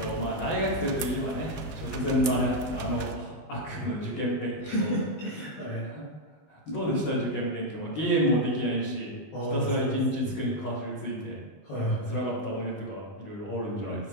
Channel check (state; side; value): late; right; 19 ms